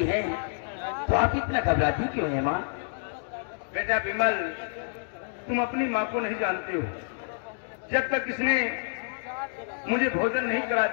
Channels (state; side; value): silent; right; digital silence